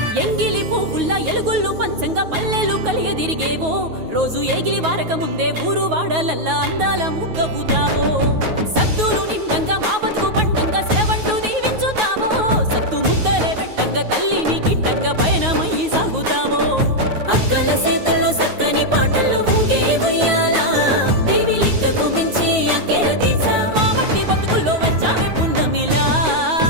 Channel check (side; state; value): left; late; 9.4 ms